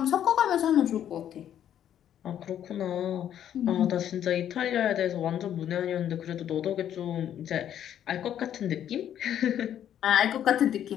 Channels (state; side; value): quieter; right; 10.3 dB